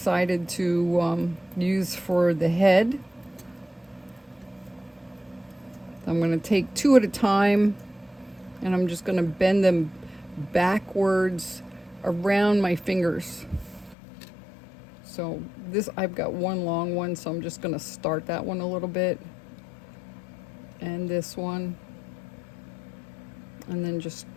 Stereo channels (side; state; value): right; drops out; at 14.0 s